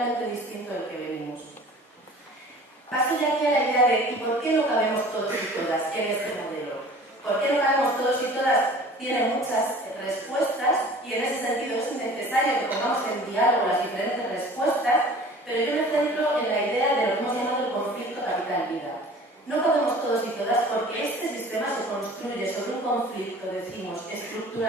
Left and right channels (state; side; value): normal; both; correlation 0.45